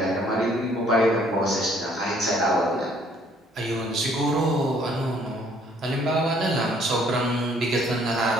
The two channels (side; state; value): both; normal; correlation 0.62